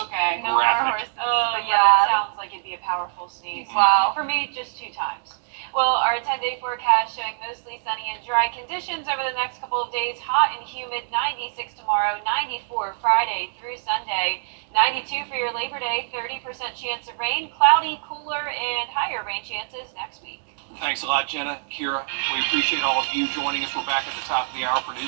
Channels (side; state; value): left; silent; digital silence